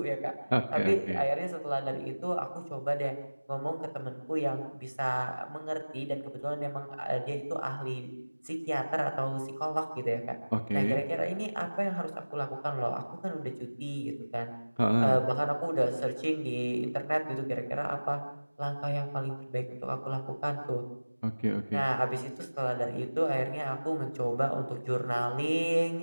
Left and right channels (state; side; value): inverted; both; correlation -1.00